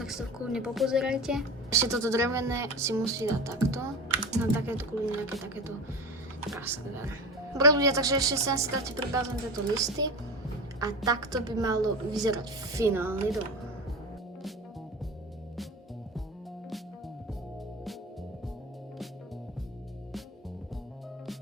si to kľudne popozerajte. Ešte toto drevené si musí dať takto. Na takéto kľudne nejaké takéto praskové. Dobre ľudia, takže ešte sem si dáte pribázom tieto listy. A takto by malo vyzerať finálny dom.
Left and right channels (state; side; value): normal; both; correlation 0.28